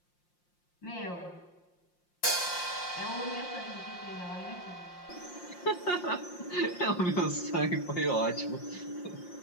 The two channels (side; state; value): right; late; 5.7 ms